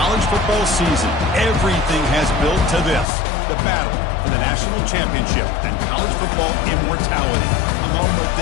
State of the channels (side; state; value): right; drops out; at 3.1 s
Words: college football season. Everything has built to this. The battle for the national championship and college football immortality. A moment